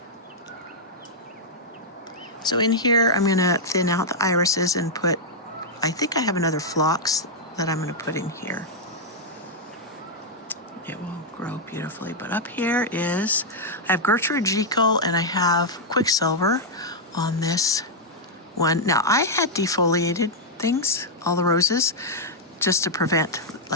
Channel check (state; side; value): normal; both; correlation -0.04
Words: So in here, I'm gonna thin out the irises and put, I think I have another phlox that I'm gonna put in here. It will grow beautifully. But up here is, I have Gertrude Jekyll and I have Quicksilver on this one. Now I had defoliated things, all the roses, just to prevent